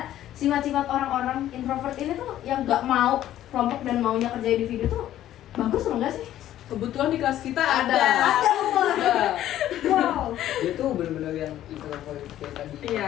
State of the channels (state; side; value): quieter; right; 12.6 dB